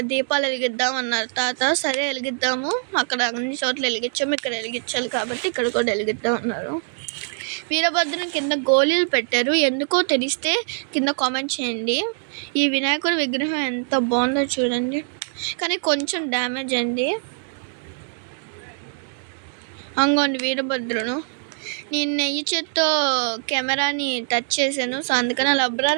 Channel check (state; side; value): silent; left; digital silence